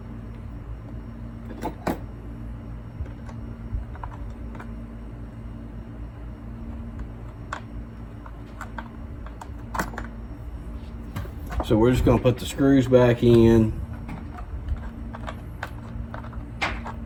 So we're just going to put the screws back in.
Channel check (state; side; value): identical; both; correlation 1.00